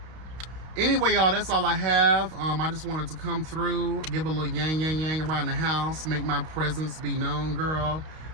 Anyway, y'all, that's all I have. I just wanted to come through, give a little yang around the house, make my presence be known, girl.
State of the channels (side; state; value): left; late; 32 ms